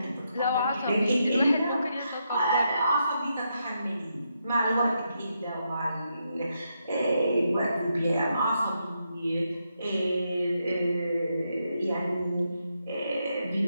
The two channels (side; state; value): both; inverted; correlation -0.81